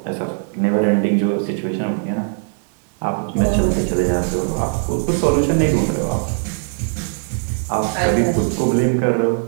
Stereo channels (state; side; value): silent; left; digital silence